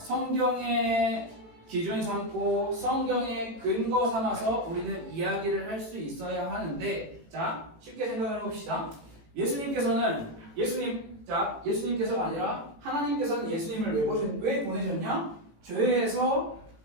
기준 삼고 성경의 근거 삼아서 우리는 이야기를 할 수 있어야 하는데, 자, 쉽게 생각해 봅시다. 예수님께서가 아니라 하나님께서는 예수님을 왜 보내셨냐? 죄에서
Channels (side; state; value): left; late; 18 ms